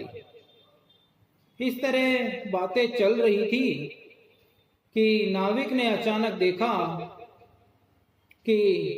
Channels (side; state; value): both; identical; correlation 1.00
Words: इस तरह बातें चल रही थी कि नाविक ने अचानक देखा कि